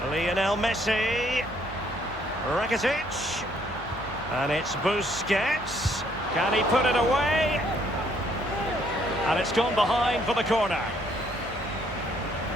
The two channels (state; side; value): normal; both; correlation 0.67